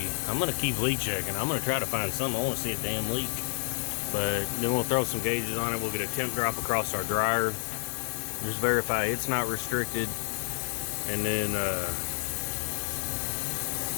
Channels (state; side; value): silent; right; 58 dB below the other